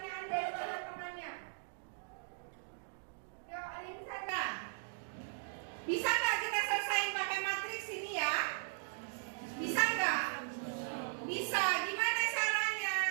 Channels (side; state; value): left; silent; digital silence